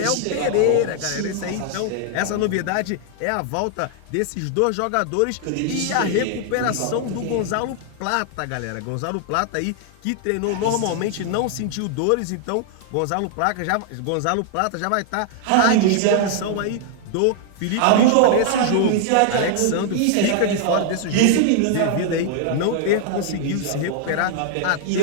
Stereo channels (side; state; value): both; different; correlation 0.00